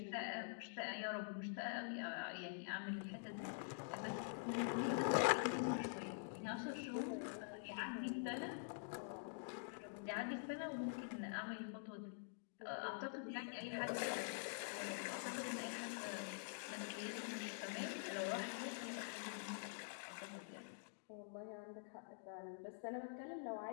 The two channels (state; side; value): silent; right; digital silence